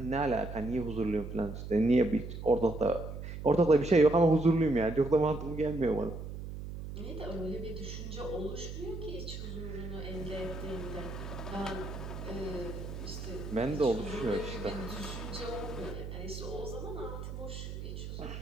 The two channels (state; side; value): noise; right; hum, 8 dB below the sound